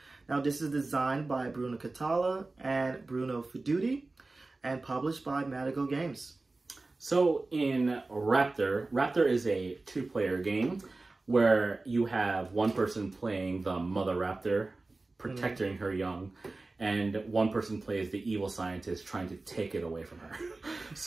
Now this is designed by Bruno Catala and Bruno Feduti and published by Madigo Games. So in Raptor is a two-player game where you have one person playing the mother raptor, protecting her young, and one person plays the evil scientist trying to take it away from her.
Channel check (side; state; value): left; quieter; 3.3 dB